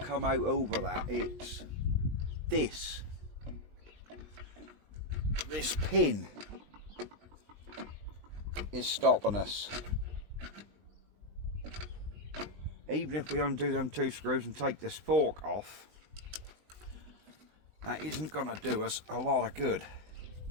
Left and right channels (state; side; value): late; left; 20 ms